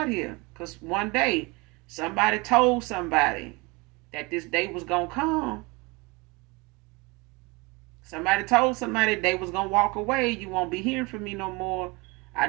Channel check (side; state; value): left; quieter; 25.5 dB